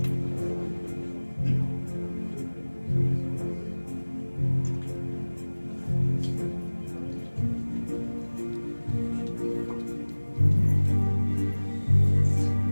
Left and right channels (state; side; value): inverted; both; correlation -1.00